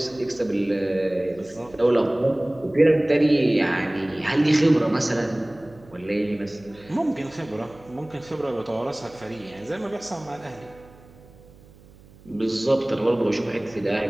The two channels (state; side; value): noise; right; hum, 24 dB below the sound